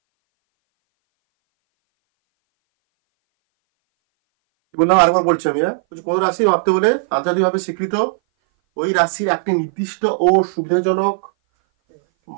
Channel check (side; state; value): left; silent; 59 dB below the other